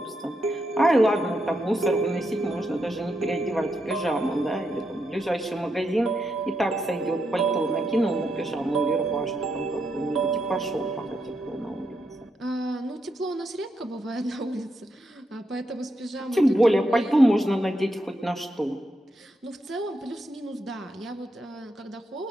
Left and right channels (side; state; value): both; normal; correlation 0.82